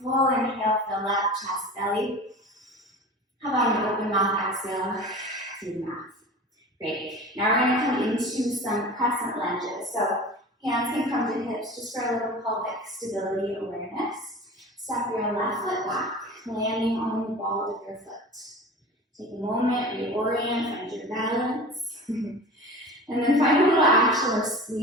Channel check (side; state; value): both; normal; correlation 0.36